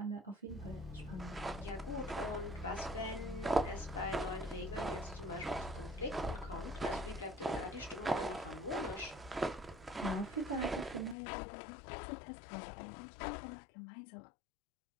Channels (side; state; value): right; drops out; at 11.2 s